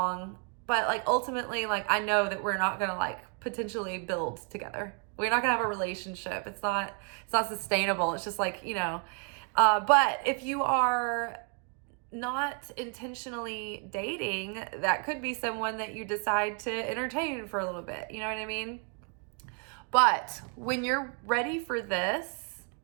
but like ultimately, like, I know that we're not gonna like potentially build together. We're not gonna have a relationship. It's not sustainable. It's just like, you know, but if you are not intentionally dating, that could be someone that you decide to entertain for a little bit. You know what I mean? But when you're ready for this,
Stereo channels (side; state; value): left; quieter; 38.5 dB